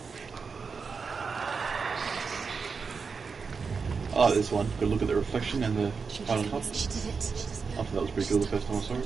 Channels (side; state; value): left; quieter; 5.2 dB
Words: Oh, this one. Good look at the reflection and the fight on top. She did it. I thought that was pretty cool the first time I saw